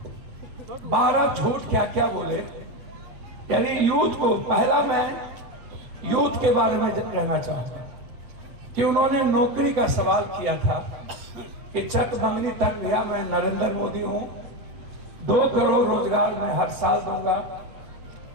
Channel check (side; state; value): left; late; 8.6 ms